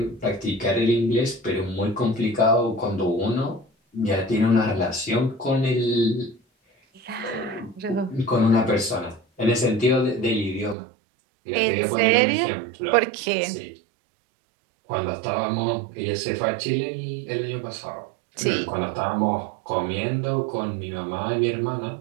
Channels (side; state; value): left; drops out; at 10.8 s